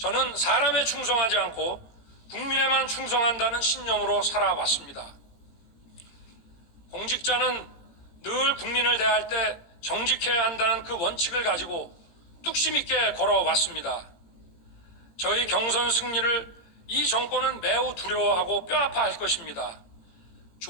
사람에 충성하지 않고 국민에만 충성한다는 신념으로 살아왔습니다. 공직자는 늘 국민을 대할 때 정직해야 한다는 그 원칙을 가지고 뚝심 있게 걸어왔습니다. 저희 경선 승리를 이 정권은 매우 두려워하고 뼈아파할 것입니다.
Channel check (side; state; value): right; late; 18 ms